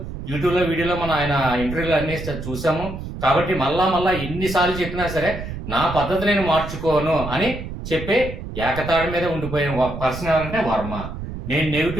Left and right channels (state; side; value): noise; right; rumble, 8 dB below the sound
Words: యూట్యూబ్లో వీడియోలో మనం ఆయన ఇంటర్వ్యూలు అన్ని చూసాము. కాబట్టి మళ్ళా ఎన్నిసార్లు చెప్పినా సరే నా పద్ధతి నేను మార్చుకోను అని చెప్పే ఏకతాడి మీద ఉండిపోయిన పర్సన్ ఎవరంటే వర్మ. నేను